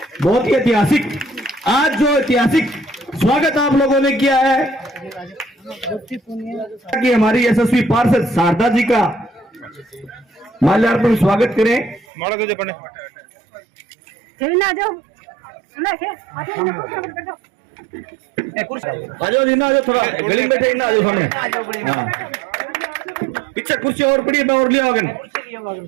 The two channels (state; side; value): drops out; left; at 12.1 s